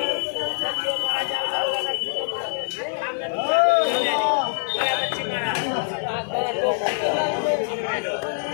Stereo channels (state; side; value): silent; right; digital silence